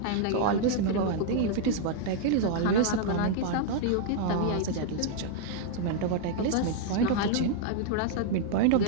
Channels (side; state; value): both; different; correlation 0.00